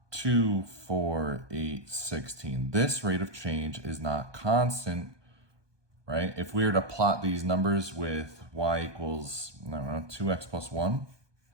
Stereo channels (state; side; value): late; left; 1.2 ms